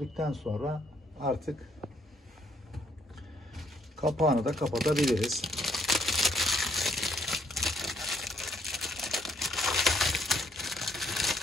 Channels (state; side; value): normal; both; correlation 0.68